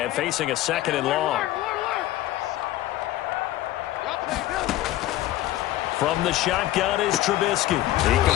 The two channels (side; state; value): right; quieter; 15.1 dB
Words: facing a 2nd and long. From the shotgun is Trubisky. He